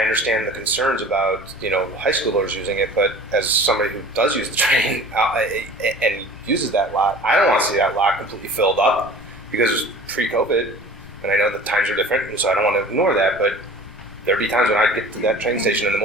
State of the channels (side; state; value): left; noise; rumble, 21 dB below the sound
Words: understand the concerns about high schoolers using it, but as somebody who does use the train and uses that lot, I don't want to see that lot completely filled up because it was pre-COVID, and I know the times are different, and so I don't want to ignore that, but there'd be times when I'd get to that train station in the